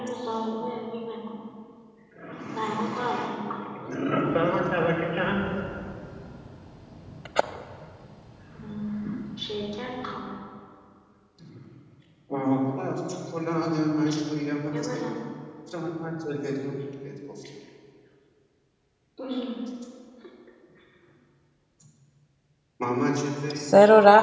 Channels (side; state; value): both; identical; correlation 1.00